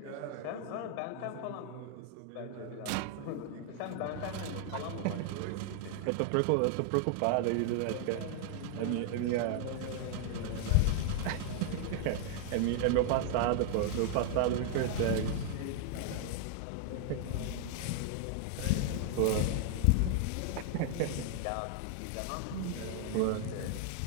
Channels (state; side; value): different; both; correlation 0.00